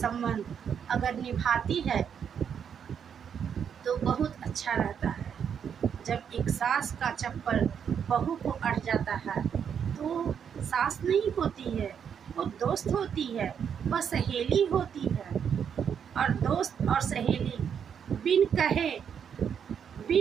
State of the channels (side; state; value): left; quieter; 7.8 dB